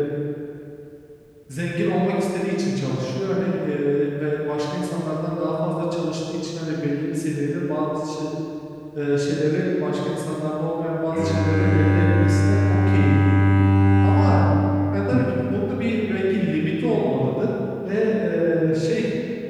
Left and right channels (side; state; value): both; identical; correlation 1.00